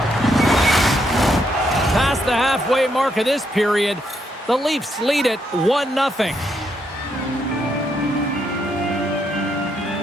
puck of this period. The Leafs lead it 1-0.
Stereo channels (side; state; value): both; normal; correlation 0.77